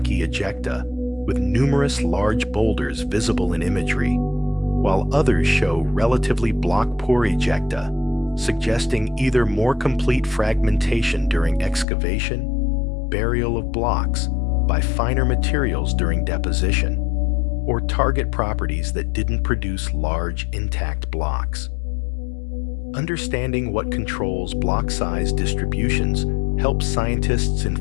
ejecta with numerous large boulders visible in imagery, while others show relatively block-poor ejecta, suggesting either more complete fragmentation during excavation, burial of blocks by finer materials during deposition, or target properties that didn't produce large, intact blocks. Understanding what controls block size distributions helps scientists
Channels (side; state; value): right; drops out; at 11.9 s